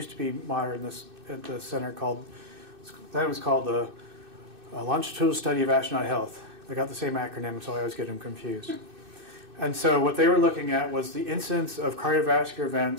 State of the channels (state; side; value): late; left; 2.6 ms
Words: to be monitored at the center called the Longitudinal Study of Astronaut Health. They got the same acronym, so I always get them confused. And so what they were looking at was the incidence of cardiovascular